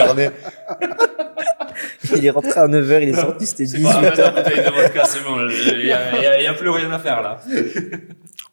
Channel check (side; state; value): both; inverted; correlation -1.00